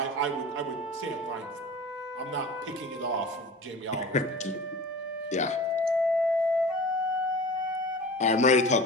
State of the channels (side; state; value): both; normal; correlation 0.36